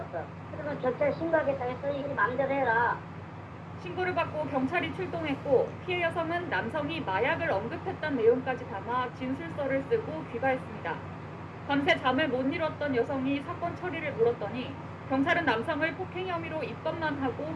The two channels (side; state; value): both; identical; correlation 1.00